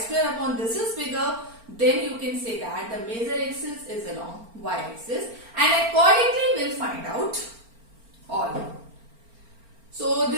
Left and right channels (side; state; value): left; late; 4.4 ms